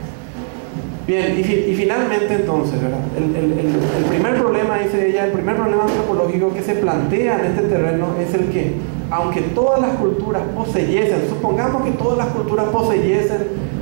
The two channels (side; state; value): left; silent; 68 dB below the other